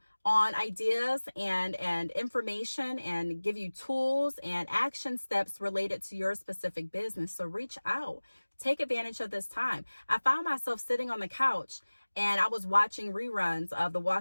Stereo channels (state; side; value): inverted; both; correlation -1.00